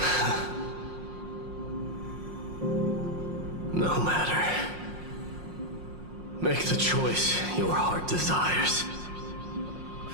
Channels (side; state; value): left; late; 5.6 ms